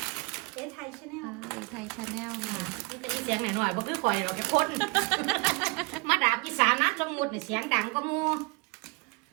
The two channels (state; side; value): quieter; left; 27.0 dB